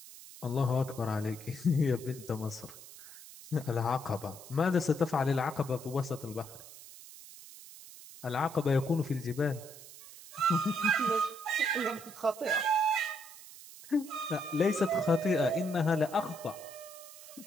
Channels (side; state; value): right; noise; hiss, 17 dB below the sound